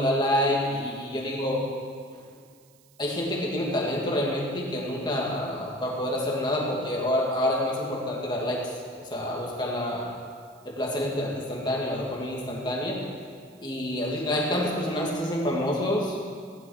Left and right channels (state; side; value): noise; right; hiss, 29 dB below the sound